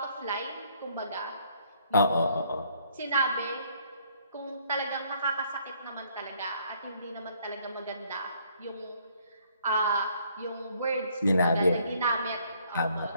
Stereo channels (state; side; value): inverted; both; correlation -0.64